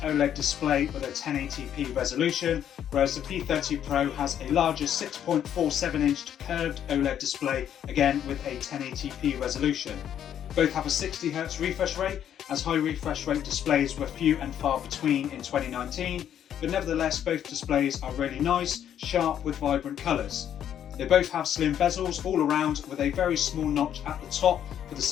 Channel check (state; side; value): quieter; right; 9.8 dB